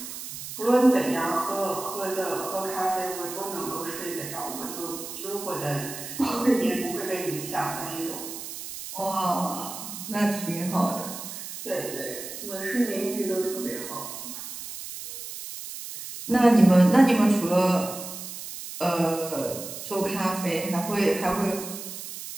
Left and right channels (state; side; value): noise; right; hiss, 9 dB below the sound